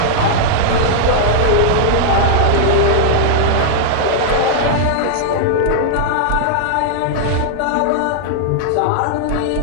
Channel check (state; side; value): different; both; correlation -0.01